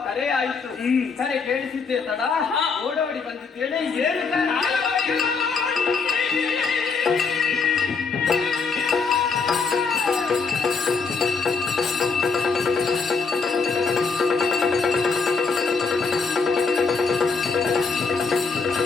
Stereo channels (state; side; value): quieter; right; 4.8 dB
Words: ಕರೆ ಆಯಿತು. ಕರೆ ಕೇಳಿಸಿದ್ದೆ ತಡ ಓಡೋಡಿ ಬಂದಿದ್ದೇನೆ. ಏನು